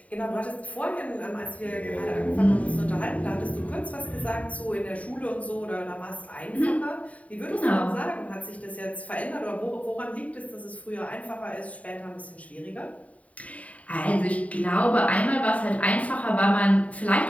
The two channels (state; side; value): late; right; 0.068 ms